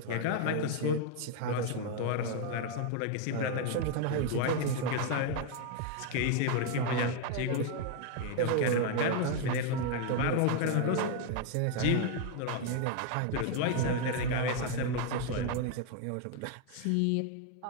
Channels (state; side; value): different; both; correlation 0.01